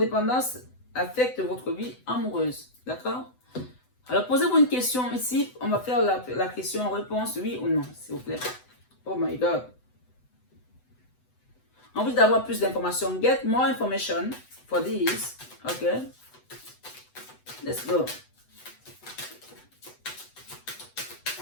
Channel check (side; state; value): right; late; 8.0 ms